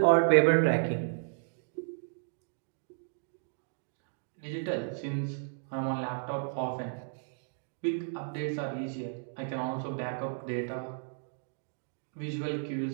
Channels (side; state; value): left; silent; digital silence